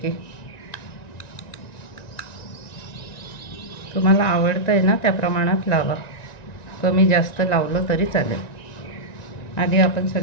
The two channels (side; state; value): right; late; 1.9 ms